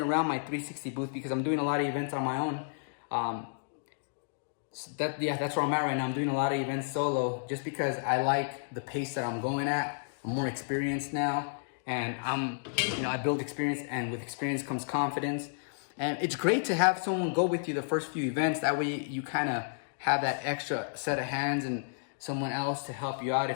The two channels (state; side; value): silent; right; digital silence